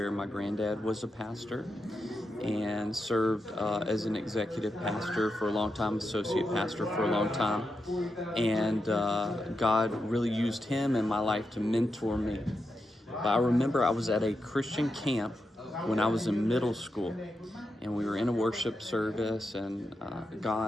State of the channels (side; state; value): both; normal; correlation 0.87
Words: my granddad was a pastor and served as an executive pastor for a long time, associate pastor for a long time. And God really used him in my life to mentor me. But I remember I was at a Christian camp when I was in middle school, and we were in a worship service, and